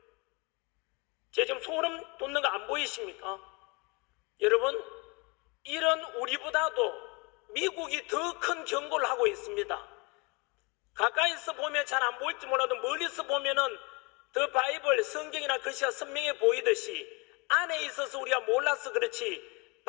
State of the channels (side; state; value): right; quieter; 28.7 dB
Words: 제가 지금 소름 돋는 거 안 보이십니까? 여러분, 이런 우리보다도 미국이 더 큰 경고를 하고 있습니다. 가까이서 보면 잘 안 보일지 몰라도 멀리서 보면은 더 바이블 성경이나 글씨가 선명해 보이듯이 안에 있어서 우리가 몰라서 그렇지